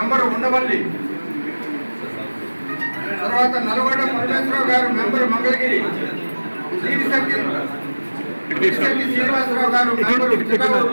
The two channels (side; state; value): both; inverted; correlation -1.00